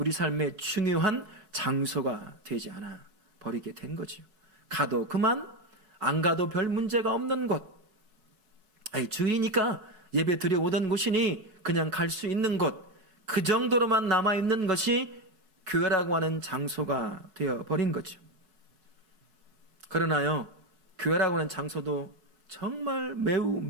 삶의 중요한 장소가 되지 않아 버리게 된 거죠. 가도 그만, 안 가도 별 문제가 없는 곳. 주일이니까 예배 드려오던 곳이니 그냥 갈 수 있는 곳. 그 정도로만 남아있는 것이 교회라고 하는 장소가 되어버린 거죠. 그러나요, 교회라고 하는 장소도 정말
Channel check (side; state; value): left; late; 4.7 ms